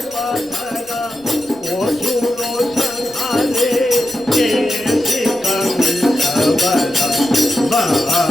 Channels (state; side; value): noise; left; rumble, 28 dB below the sound